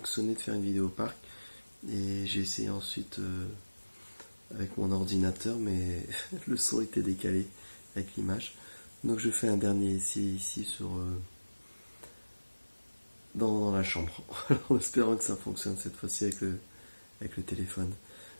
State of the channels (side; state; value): both; inverted; correlation -1.00